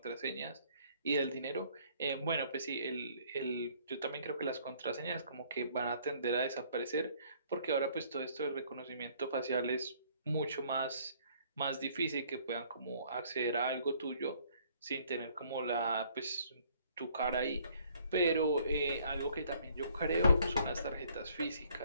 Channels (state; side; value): inverted; both; correlation -0.62